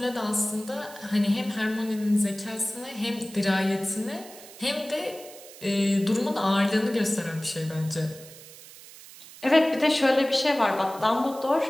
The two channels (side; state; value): right; noise; hiss, 18 dB below the sound